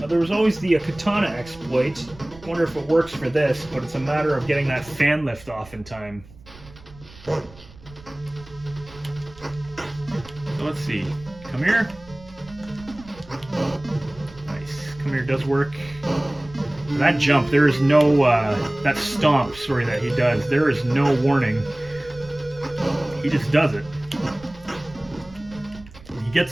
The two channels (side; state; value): right; noise; rumble, 21 dB below the sound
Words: there was always the katana exploit. Wonder if it works for this, but it's a matter of getting that fan lift off in time. So let's see. Come here. Nice. Come here does work. That jump, there is no, that stomp, sorry, that he does, there is no warning. He just does it. He